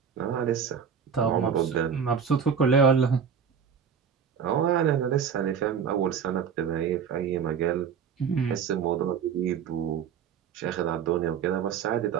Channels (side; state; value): left; quieter; 7.1 dB